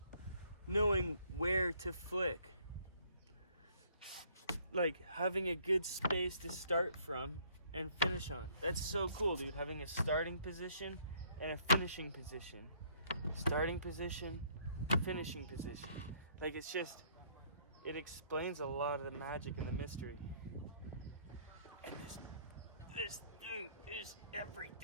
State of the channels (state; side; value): inverted; both; correlation -0.63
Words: Knowing where to flick. Like having a good space to start from and finish on. That's so cool, dude. Having a starting position and a finishing position. Starting position, finishing position. Like it's just, it explains a lot of the magic and the mystery. And this thing is